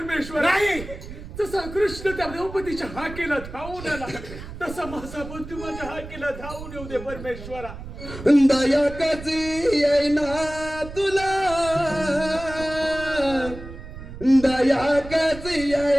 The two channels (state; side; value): noise; right; rumble, 12 dB below the sound